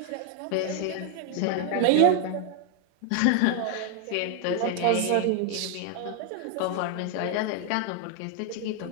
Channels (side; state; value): both; different; correlation 0.00